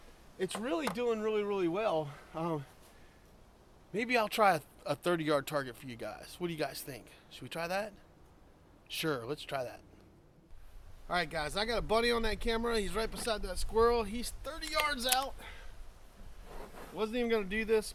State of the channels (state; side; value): identical; both; correlation 1.00